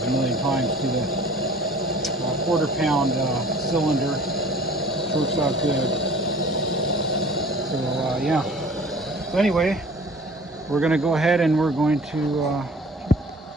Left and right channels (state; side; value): normal; both; correlation 0.47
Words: a million times, to the quarter-pound cylinder, which works out good. So yeah. So anyway, we're going to go ahead and we're going to